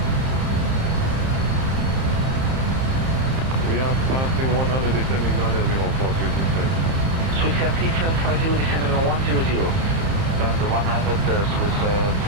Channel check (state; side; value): late; left; 30 ms